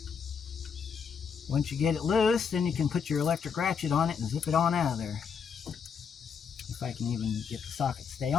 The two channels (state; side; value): quieter; right; 6.5 dB